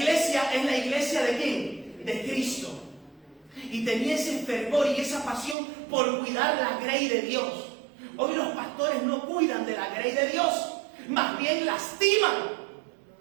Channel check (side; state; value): left; drops out; at 5.6 s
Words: es la iglesia ¿de quién? De Cristo. Y tenía ese fervor y esa pasión por cuidar la grey de Dios. Hoy los pastores no cuidan de la grey de Dios, más bien lastiman.